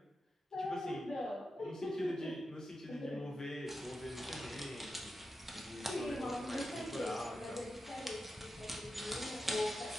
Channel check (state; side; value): normal; both; correlation 0.89